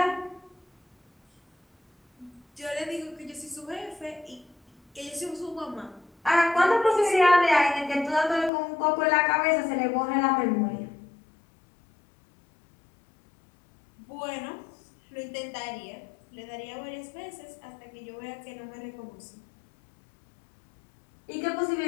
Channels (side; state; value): right; drops out; at 8.5 s